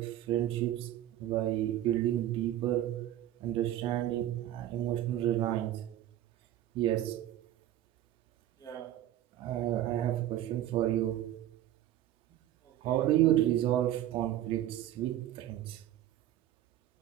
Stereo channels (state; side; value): quieter; left; 12.7 dB